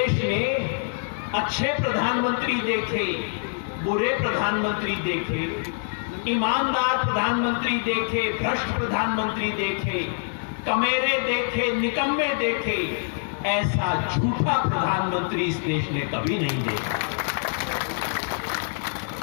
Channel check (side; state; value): right; silent; 62 dB below the other